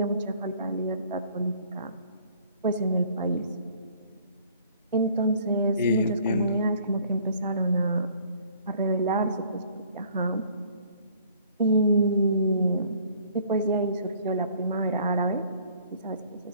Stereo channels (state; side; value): inverted; both; correlation -0.56